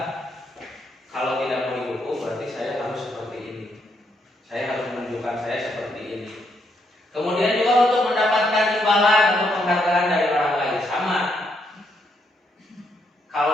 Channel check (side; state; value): both; normal; correlation 0.76